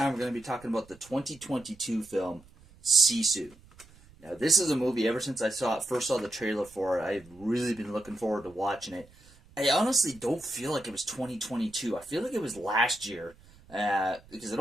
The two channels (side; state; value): right; noise; rumble, 25 dB below the sound